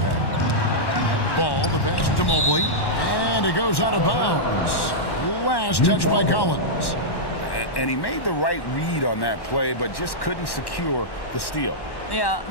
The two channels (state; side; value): late; right; 1.1 ms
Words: Ball, the pass to Mobley, and it goes out of bounds. Last touch by Collins. And he made the right read on that play, but just couldn't secure the steal. Yeah,